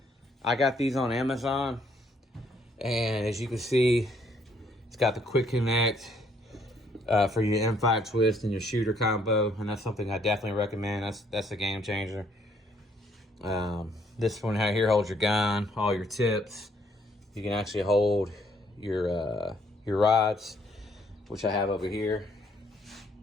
got these on Amazon, and as you can see, it's got the quick connect for your M5 twist and your shooter combo, and that's something I definitely recommend. That's a game changer. This one here holds your gun, all your tips. You can actually hold your rods, which I have over here.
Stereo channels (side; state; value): both; normal; correlation 0.67